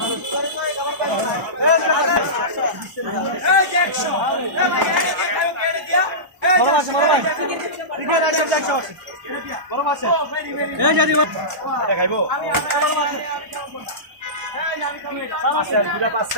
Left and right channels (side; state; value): left; late; 1.0 ms